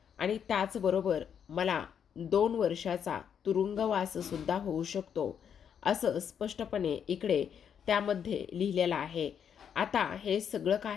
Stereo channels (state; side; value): quieter; right; 8.0 dB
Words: आणि त्याचबरोबर मला 2 वर्षाचा तुरुंगवाससुद्धा होऊ शकतो, असं स्पष्टपणे इकडे त्यामध्ये लिहिलेलं आहे. आता हे सगळं